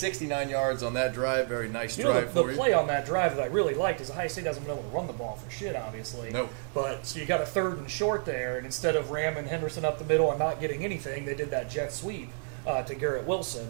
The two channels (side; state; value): left; silent; 57 dB below the other